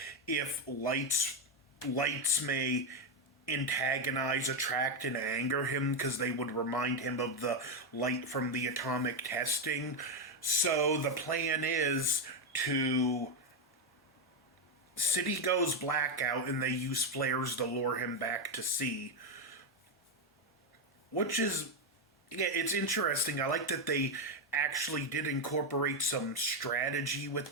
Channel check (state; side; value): normal; both; correlation 0.07